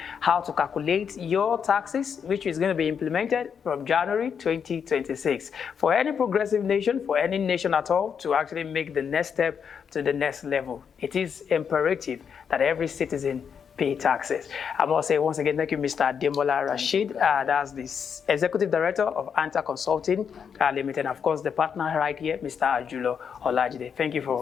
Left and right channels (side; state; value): right; quieter; 7.0 dB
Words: how to calculate your taxes, which is going to be implemented from January 2026. For any progressive nation, for any nation at all, to actually make the next step to the next level, it is imperative that every citizen pay taxes. I must say once again, thank you, Mr. Ademola Rasheed. That's the Executive Director of Anther Consulting Limited. And of course, the partner right here, Mr. Ajulo Olajide. Thank you